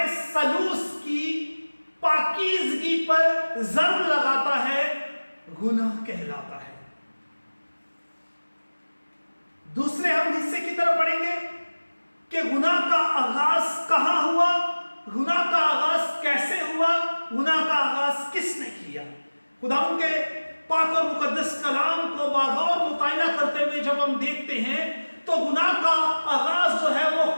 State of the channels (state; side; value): inverted; both; correlation -1.00